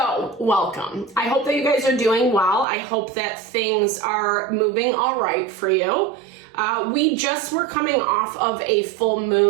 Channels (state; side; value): drops out; left; at 2.7 s